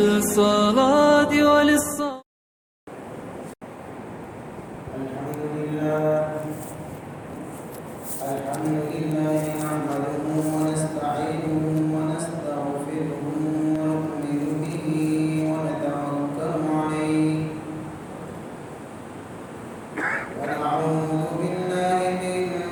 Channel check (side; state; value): both; identical; correlation 1.00